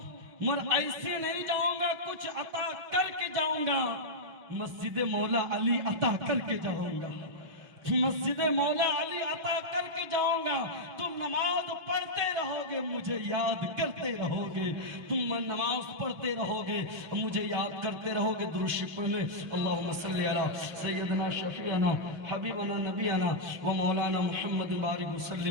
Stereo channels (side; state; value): left; late; 5.7 ms